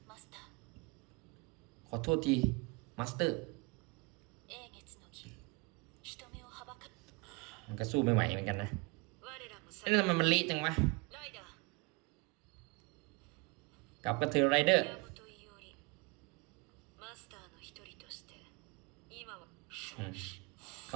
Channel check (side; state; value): left; quieter; 26.8 dB